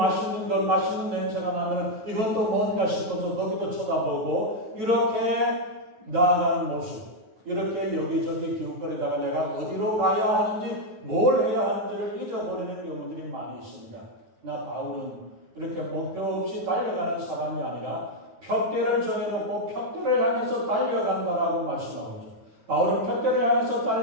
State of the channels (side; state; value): left; late; 9.0 ms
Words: 것, 맛있는 냄새가 나면 이것도 뭔가 싶어서 거기도 쳐다보고 이렇게 나아가는 모습, 이렇게 여기저기 기웃거리다가 내가 어디로 가야 하는지 뭘 해야 하는지를 잊어버리는 경우들이 많이 있습니다. 나 바울은 이렇게 목표 없이 달려가는 사람이 아니라 푯대를 정해놓고 푯대를 향해서 달려간다라고 말씀하죠. 바울은 푯대를 향해서